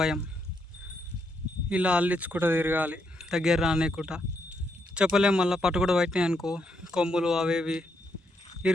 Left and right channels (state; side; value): normal; both; correlation 0.78